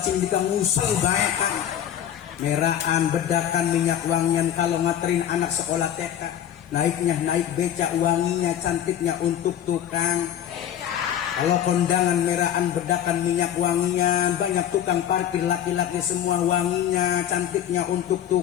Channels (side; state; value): right; quieter; 10.3 dB